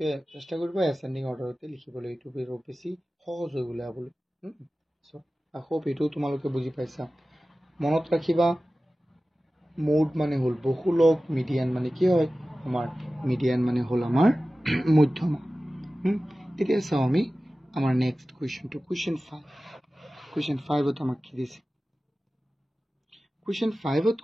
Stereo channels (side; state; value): both; normal; correlation 0.96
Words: চেষ্টা কৰিবা ascending order তে লিখিবলৈ এইটো বেছি সহজ হৈ উলাবলৈ সো I hope এটো তোমালোকে বুজি পাইছা মনত ৰাখিবা মোড মানে হল বহুলক মিডিয়ান মানে কি হয় আমাৰ মিডিয়ান মানে হল আমাৰ মধ্যমা এতিয়া চাও আমি আমাৰ নেক্সট কোৱেশ্চনটো কোৱেশ্চন 5 ত আমাক কি দিছে কোৱেশ্চন 5 ত